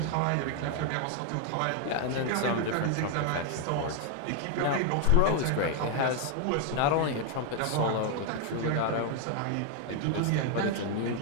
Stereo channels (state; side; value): different; both; correlation 0.01